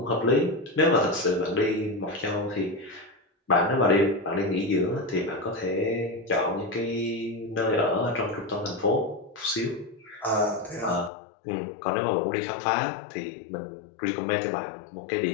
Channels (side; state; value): right; drops out; at 11.1 s